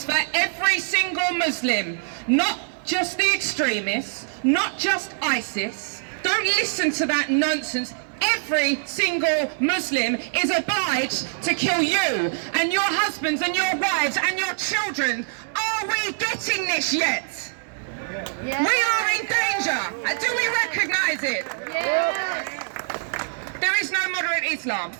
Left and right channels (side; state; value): left; silent; 63 dB below the other